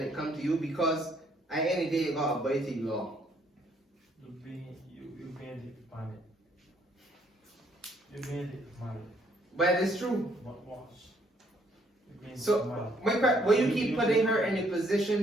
it comes to you, because at the end of the day you got to abide the law. You being it, man. You being it, man. But it's true. But watch. So, will you keep putting her in a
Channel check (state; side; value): normal; both; correlation 0.67